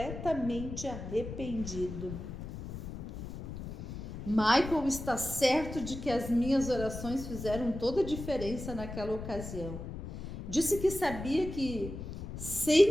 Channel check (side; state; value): left; noise; rumble, 8 dB below the sound